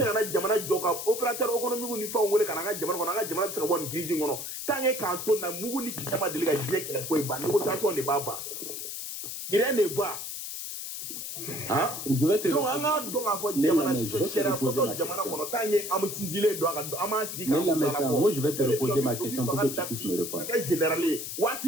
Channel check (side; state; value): left; noise; hiss, 6 dB below the sound